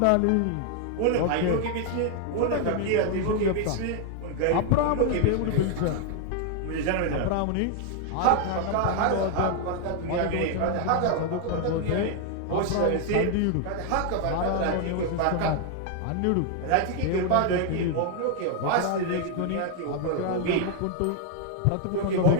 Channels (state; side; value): different; both; correlation 0.00